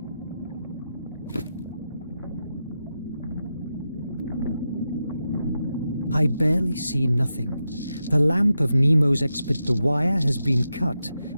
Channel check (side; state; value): both; inverted; correlation -0.88